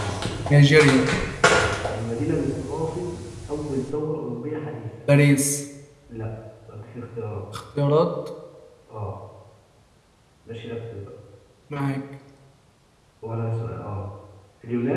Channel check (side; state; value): both; identical; correlation 1.00